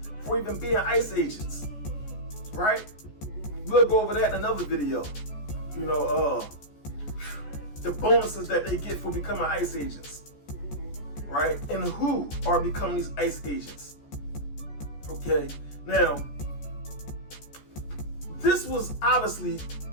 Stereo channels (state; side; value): late; right; 14 ms